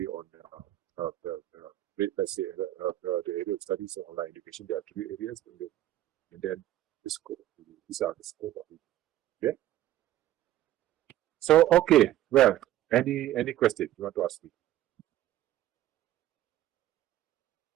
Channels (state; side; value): quieter; left; 13.7 dB